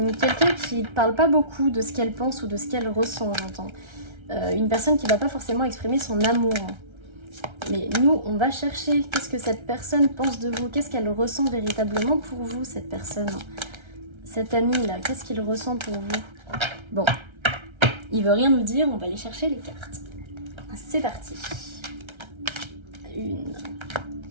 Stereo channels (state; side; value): late; left; 1.3 ms